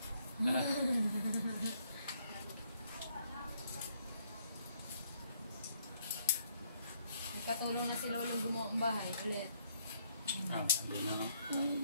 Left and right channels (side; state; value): both; inverted; correlation -0.69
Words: Katulong na si Lolong gumawa ang bahay ulit. Hindi na no.